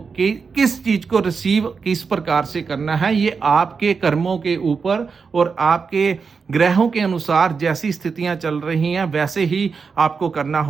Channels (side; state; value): left; quieter; 5.3 dB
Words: किस चीज़ को रिसीव किस प्रकार से करना है, ये आपके कर्मों के ऊपर और आपके ग्रहों के अनुसार जैसी स्थितियां चल रही हैं वैसे ही आपको करना